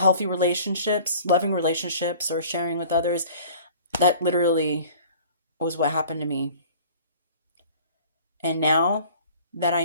relationships, loving relationships, or sharing with others. That literally was what happened to me. And now that I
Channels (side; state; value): both; inverted; correlation -0.47